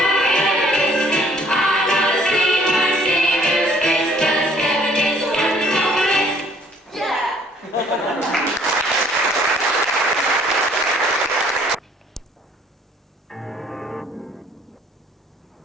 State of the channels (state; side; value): normal; both; correlation 0.59